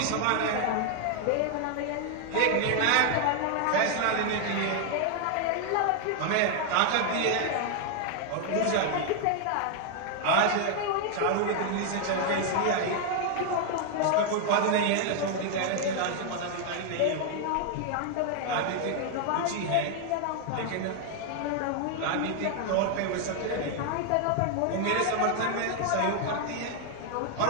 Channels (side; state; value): both; different; correlation 0.00